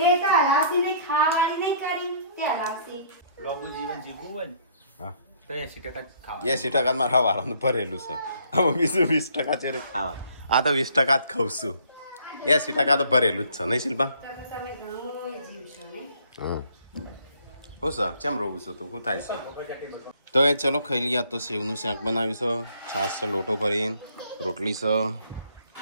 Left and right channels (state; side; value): inverted; both; correlation -0.61